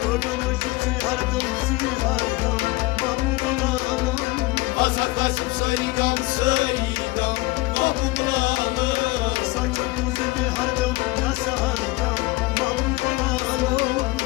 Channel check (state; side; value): quieter; right; 21.5 dB